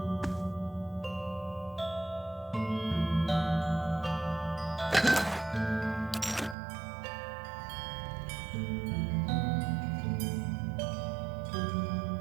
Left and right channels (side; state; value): left; drops out; at 6.6 s